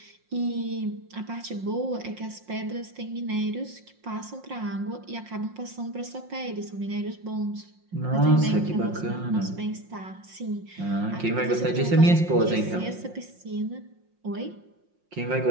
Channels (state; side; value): late; left; 5.6 ms